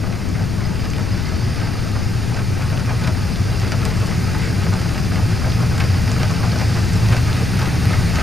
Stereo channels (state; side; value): noise; left; rumble, 2 dB below the sound